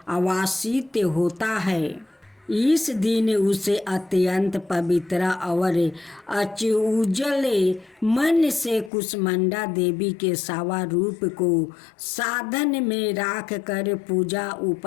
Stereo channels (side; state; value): right; drops out; at 8.9 s